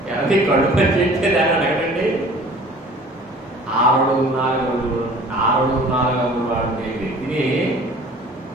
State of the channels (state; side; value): normal; both; correlation 0.48